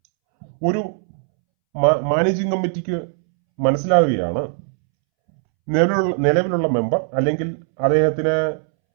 ഒരു മാനേജിംഗ് കമ്മിറ്റിക്ക് മനസ്സിലാവുകയാണ് നിലവിലുള്ള മെമ്പർ അല്ലെങ്കിൽ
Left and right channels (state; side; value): silent; left; 66 dB below the other